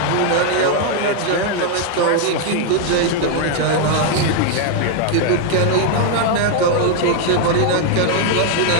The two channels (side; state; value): both; different; correlation 0.00